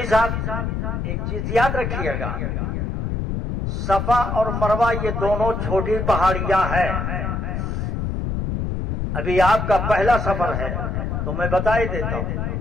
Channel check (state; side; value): noise; left; rumble, 2 dB below the sound